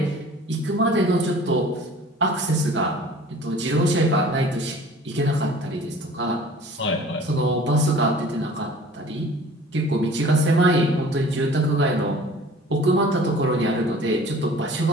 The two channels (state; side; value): normal; both; correlation 0.47